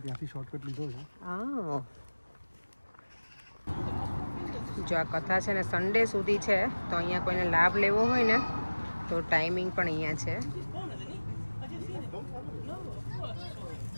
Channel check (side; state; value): both; inverted; correlation -1.00